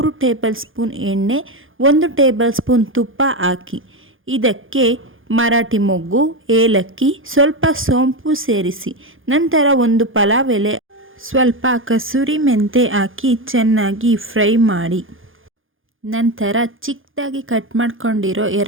ಟೇಬಲ್ ಸ್ಪೂನ್ ಎಣ್ಣೆ, 1 ಟೇಬಲ್ ಸ್ಪೂನ್ ತುಪ್ಪ ಹಾಕಿ ಇದಕ್ಕೆ ಮರಾಠಿ ಮೊಗ್ಗು, ಏಲಕ್ಕಿ, ಸ್ವಲ್ಪ ಸೋಂಪು ಸೇರಿಸಿ ನಂತರ ಒಂದು ಪಲಾವ್ ಎಲೆ, ಸ್ವಲ್ಪ ಕಸೂರಿ ಮೆಂತೆ ಹಾಕಿ ಚೆನ್ನಾಗಿ ಫ್ರೈ ಮಾಡಿ ನಂತರ ಚಿಕ್ಕದಾಗಿ ಕಟ್ ಮಾಡ್ಕೊಂಡಿರೋ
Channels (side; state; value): left; late; 0.59 ms